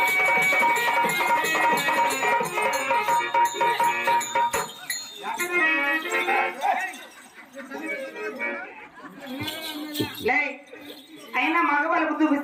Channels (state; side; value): identical; both; correlation 1.00